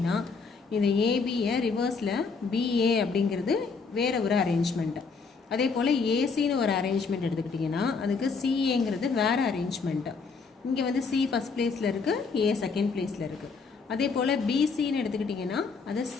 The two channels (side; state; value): right; quieter; 4.8 dB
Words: இந்த ஏபியை ரிவர்ஸில் பிஏ அப்படிங்கிறது வேறு ஒரு அரேஞ்ச்மெண்ட்டு. அதே போல் ஏசின்னு ஒரு அரேஞ்ச்மெண்ட் எடுத்துக்கிட்டிங்கன்னா அதுக்கு சிஏங்கிறது வேறு அரேஞ்ச்மெண்ட்டு. இங்கே வந்து சி ஃபஸ்ட் பிளேஸில் இருக்குது, ஏ செகண்ட் பிளேஸில் இருக்குது. அதே போல் பிசின்னு எடுத்துக்கிட்டிங்கன்னா அது